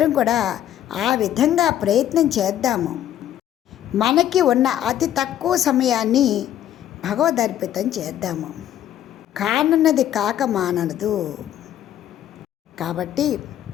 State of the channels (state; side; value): quieter; right; 11.5 dB